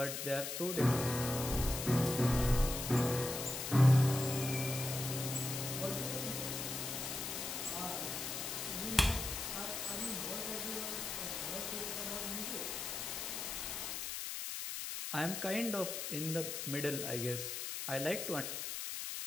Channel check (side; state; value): left; noise; hiss, 4 dB below the sound